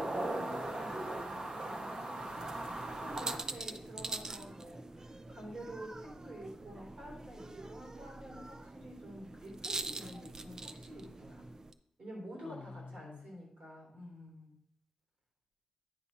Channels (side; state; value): both; normal; correlation 0.75